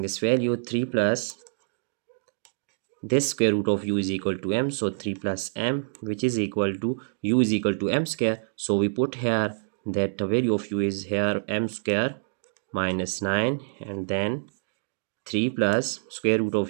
this value 3 plus this square root of u is equal to m, so 3 plus m, which is equal to u is equal to m square. So we put here that the value of u is here m square minus 9, and then 3 plus square root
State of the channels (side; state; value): left; silent; digital silence